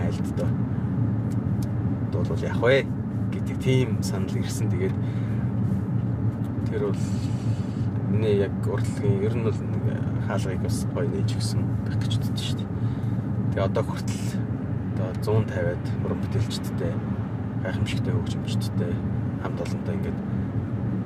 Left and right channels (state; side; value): identical; both; correlation 1.00